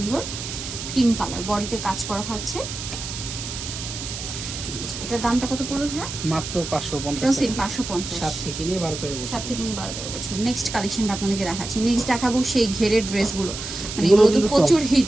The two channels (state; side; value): noise; right; hiss, 8 dB below the sound